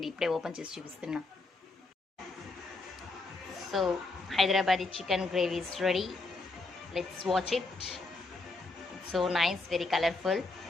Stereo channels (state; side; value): quieter; right; 3.3 dB